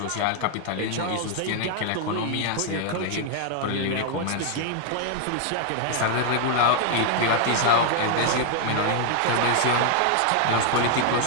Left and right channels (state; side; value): different; both; correlation 0.00